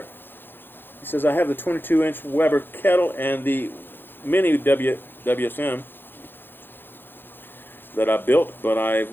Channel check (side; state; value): right; late; 0.099 ms